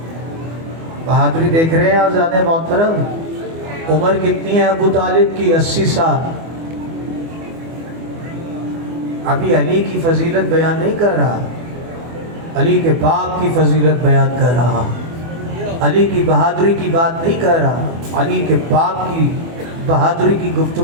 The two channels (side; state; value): left; late; 24 ms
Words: بہادری دیکھ رہے ہیں آزاد محترم۔ عمر کتنی ہے ابو طالب کی؟ 80 سال۔ ابھی علی کی فضیلت بیان نہیں کر رہا، علی کے باپ کی فضیلت بیان کر رہا، علی کی بہادری کی بات نہیں کر رہا، علی کے باپ کی بہادری کی